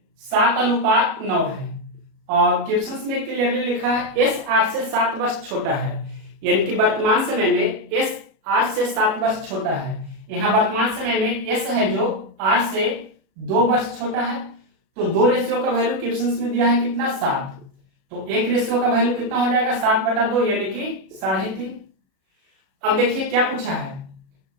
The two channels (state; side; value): late; left; 37 ms